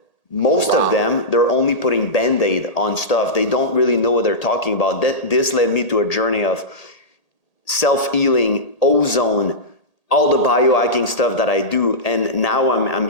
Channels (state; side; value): late; right; 1.8 ms